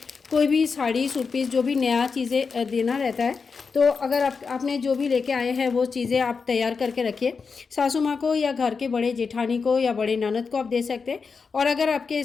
भी साड़ी, सूट पीस, जो भी नया चीज़ें देना रहता है, तो अगर आपने जो भी लेके आए हैं वो चीज़ें आप तैयार करके रखिए। सासू माँ को या घर के बड़े जेठानी को या बड़े ननद को आप दे सकते हैं। और अगर आपके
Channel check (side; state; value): right; quieter; 5.1 dB